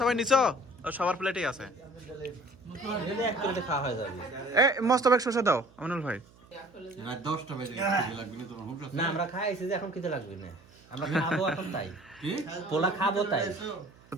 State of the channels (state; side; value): noise; right; hum, 27 dB below the sound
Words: নিছো? সবার প্লেটেই আছে। এলে এক করে খাওয়া হয়ে যাবে। এই মোস্তফাক শশা দাও আমিনুল ভাই। না আমরা খাইছি যে এখন খেতে লাগবে না, আমরা খাবো এখন, তাই পোলা খাবো তাই।